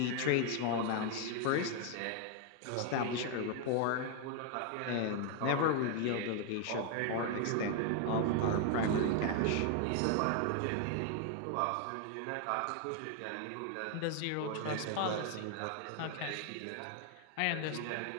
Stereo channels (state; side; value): different; both; correlation 0.00